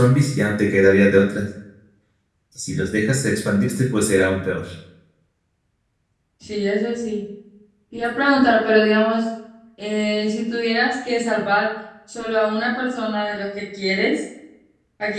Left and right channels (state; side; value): identical; both; correlation 1.00